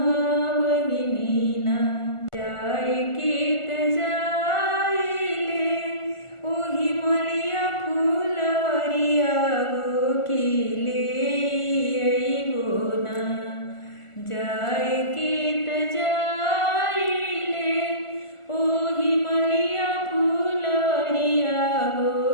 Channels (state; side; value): late; right; 1.4 ms